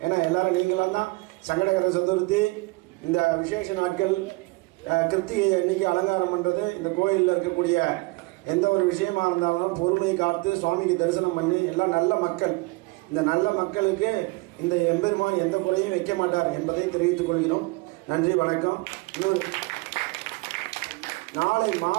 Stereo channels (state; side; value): quieter; left; 24.4 dB